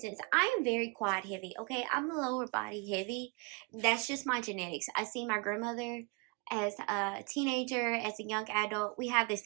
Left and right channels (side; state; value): left; quieter; 30.9 dB